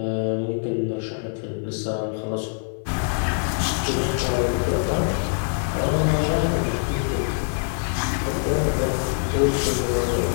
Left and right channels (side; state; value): right; silent; digital silence